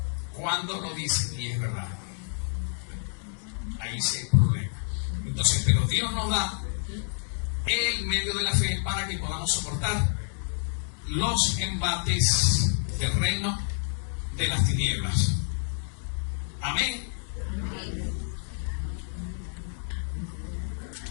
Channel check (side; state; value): right; silent; digital silence